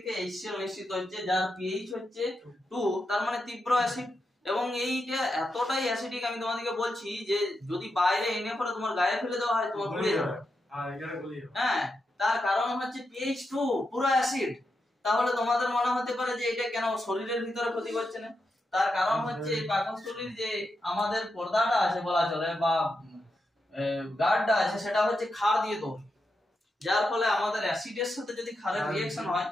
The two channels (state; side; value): normal; both; correlation 0.86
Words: HCl নিশ্চিত হচ্ছে, যার pH হচ্ছে 2, তার মানে তীব্র অ্যাসিড। এবং এইটা এতটাই অ্যাসিডিক আমি তোমাদেরকে বলছি যে যদি বাইরে এনে পরে তোমার গায়ে ফেলে দেওয়া হয় তোমার গুলিয়ে যাবে। হ্যাঁ, তার কারণ হচ্ছে pH 2 পুরো অ্যাসিড। তাহলে তোমাদের মনে হতে পারে যে এটা কেন শরীরের ভিতরে ক্ষতি করছে না? তার কারণ হচ্ছে পাকস্থলীর যে আমাদের পর্দাটা আছে বলা চলে বা গার্ডটা আছে সেটা হচ্ছে ক্ষার দিয়ে তৈরি, যার ফলে আমাদের অ্যাসিডের সাথে যদি ক্ষারের রিঅ্যাকশন হয়